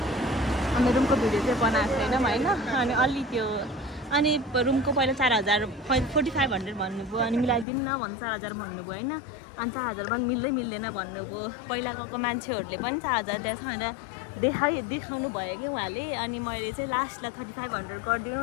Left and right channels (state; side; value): drops out; right; at 7.7 s